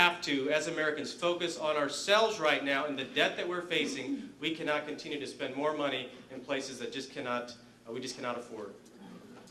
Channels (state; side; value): identical; both; correlation 1.00